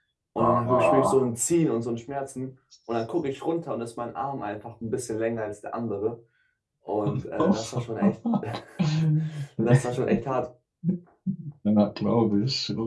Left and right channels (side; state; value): both; identical; correlation 1.00